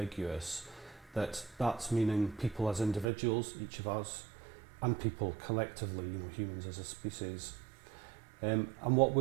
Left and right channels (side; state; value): left; drops out; at 3.1 s